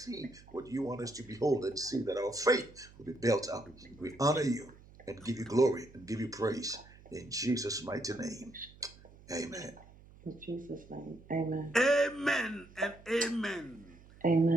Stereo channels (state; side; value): noise; right; hum, 22 dB below the sound